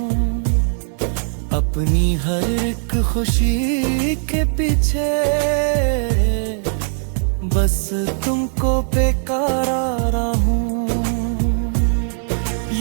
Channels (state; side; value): silent; left; 64 dB below the other